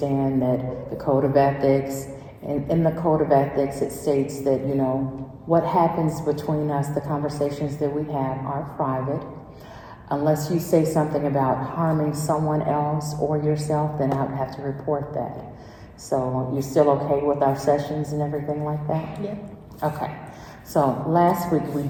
that the Code of Ethics, in the Code of Ethics, it states that, what happens between us, the conversations that we have are private. Unless you say something about harming someone else or yourself, then I would have to report that. So you're still okay with our sessions and everything like that? Yeah. Okay. So last week we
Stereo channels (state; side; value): identical; both; correlation 1.00